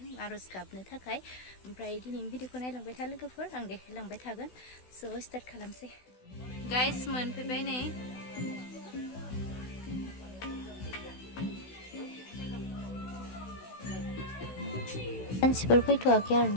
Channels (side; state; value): right; late; 16 ms